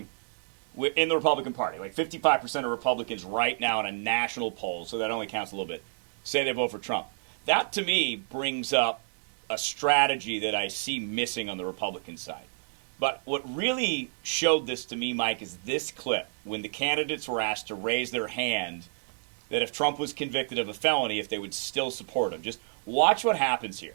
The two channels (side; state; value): left; silent; digital silence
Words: in the Republican Party. Like 55% of Republicans right now in a national poll, so that only counts a little bit, say they vote for Trump. That, to me, brings up a strategy that I see missing on the Republican side. But what really showed this to me, Mike, is this clip when the candidates were asked to raise their hand that if Trump was convicted of a felony, if they would still support him. Just watch what happens here.